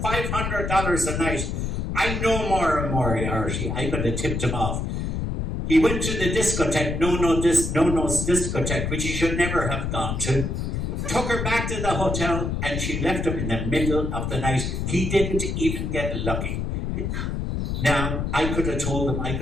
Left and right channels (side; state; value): left; noise; rumble, 2 dB below the sound